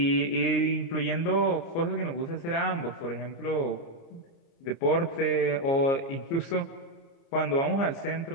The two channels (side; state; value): right; late; 29 ms